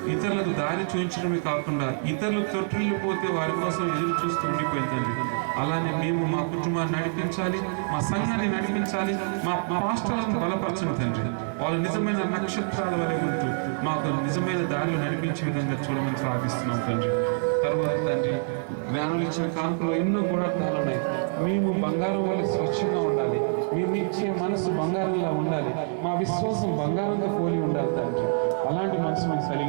ఇతరులకు దారి చూపించడమే కాకుండా ఇతరులు తొట్టిల్లు పోతే వారి కోసం ఎదురు చూస్తూ ఉండిపోయింది తండ్రి. అలానే మేము మా కుటుంబాన్ని నడిపించాలి, మా సంఘాన్ని నడిపించాలి, మా పాస్టర్లను బలపరచండి తండ్రి. వాళ్ళు నిజమైన నక్షత్రాల వలె ఉంటూ మాకు నిజమైన దారిలో నడిపించే విధంగా చూడమని ప్రార్థిస్తున్నాం తండ్రి. తర్వాత తండ్రి, జ్ఞానులు ఇచ్చిన కానుకలో ఎన్నో గుణార్థాలు ఉన్నాయి. మేము బంగారం వల్ల స్వచ్ఛంగా ఉండాలి, మేము ఇచ్చే మనసు బంగారంలా ఉండాలి, మా విశ్వాసం బంగారంగా పోలి ఉండాలి తండ్రి. అలాంటి మనసు మేము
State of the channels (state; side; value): silent; left; digital silence